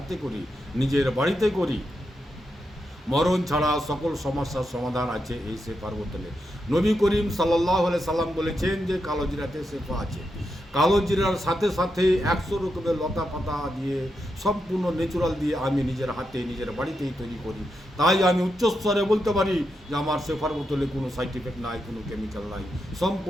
করি, নিজের বাড়িতে করি। মরণ ছাড়া সকল সমস্যার সমাধান আছে এই শেফার বোতলে। নবী করিম সাল্লাল্লাহু আলাইহি সাল্লাম বলেছেন যে কালো জিরাতে শেফা আছে। কালো জিরার সাথে সাথে 100 রকমের লতা পাতা দিয়ে, সম্পূর্ণ ন্যাচুরাল দিয়ে আমি নিজের হাতে, নিজের বাড়িতেই তৈরি করি। তাই আমি উচ্চস্তরে বলতে পারি যে আমার শেফার বোতলে কোনো সাইড এফেক্ট নাই, কোনো কেমিক্যাল নাই,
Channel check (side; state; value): both; normal; correlation 0.85